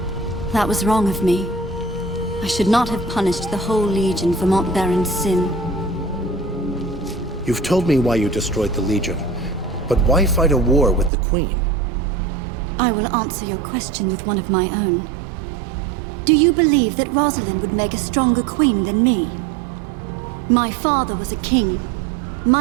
That was wrong of me. I should not have punished the whole Legion for Montbaron's sin. You've told me why you destroyed the Legion, but why fight a war with the Queen? I will answer your question with one of my own. Do you believe that Rosalind would make a stronger queen than me? My father was a king,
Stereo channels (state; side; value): drops out; left; at 11.1 s